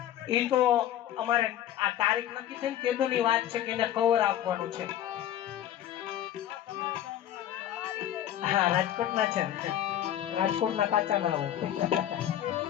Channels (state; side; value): quieter; right; 11.6 dB